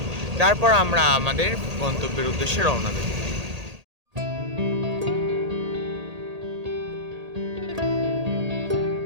তারপর আমরা আমাদের গন্তব্যের উদ্দেশ্যে রওনা দেব।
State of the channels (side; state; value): left; late; 1.8 ms